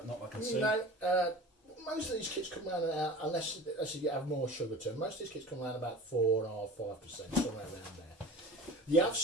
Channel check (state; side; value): normal; both; correlation 0.37